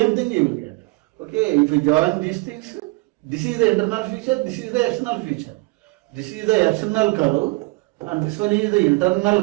thing you will get. Okay, if you join these things, this is the internal feature, this is the external feature. This is the external curve, and this one is the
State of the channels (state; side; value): quieter; left; 25.7 dB